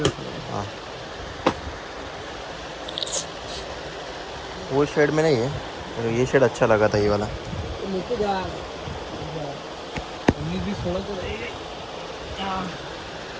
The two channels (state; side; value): identical; both; correlation 1.00